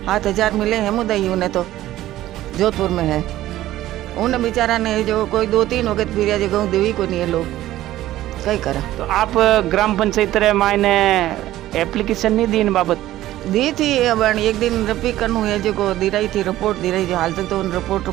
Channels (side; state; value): left; quieter; 14.6 dB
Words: 7,000 मिले हैं मुदई, उन्हें तो जोधपुर में है। उन्हें बेचारा ने जो कोई 2-3 हो गए फिर जगह देवी को नहीं है, लोग कई करा। तो आप ग्राम पंचायत रे मायने एप्लीकेशन नहीं दी इन बाबत? दी थी, अब एक दिन रपी करनू है जो को दी रही थी, रिपोर्ट दी रही थी, हाल तक तो उन